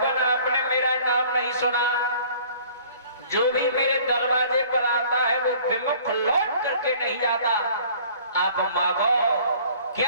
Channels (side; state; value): both; inverted; correlation -0.51